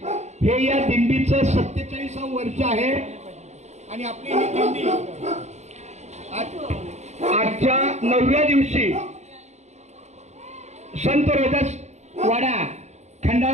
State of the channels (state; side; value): late; left; 0.33 ms